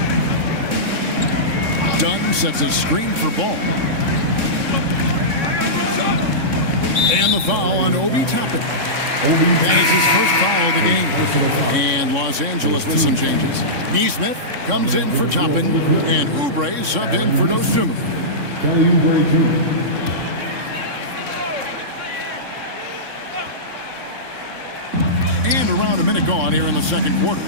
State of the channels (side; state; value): left; late; 3.7 ms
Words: Dunn sets a screen for Ball. And the foul on Obi Toppin. That is his first foul of the game. And Los Angeles with some changes. Neesmith comes in for Toppin. And Oubre subbed in for Dosunmu. And around a minute gone here in the second quarter.